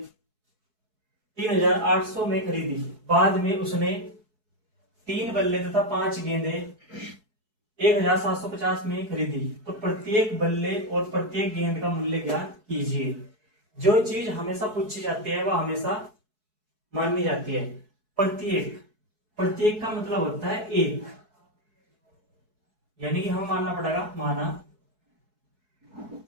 3,800 में खरीदी। बाद में उसने 3 बल्ले तथा 5 गेंदे 1,750 में खरीदी। तो प्रत्येक बल्ले और प्रत्येक गेंद का मूल्य ज्ञात कीजिए। जो चीज हमेशा पूछी जाती है वह हमेशा मानी जाती है। प्रत्येक प्रत्येक का मतलब होता है एक, यानी कि हमें मानना पड़ेगा माना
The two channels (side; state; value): left; late; 4.7 ms